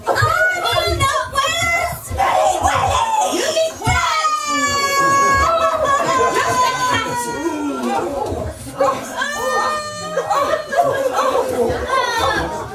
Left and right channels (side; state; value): both; identical; correlation 1.00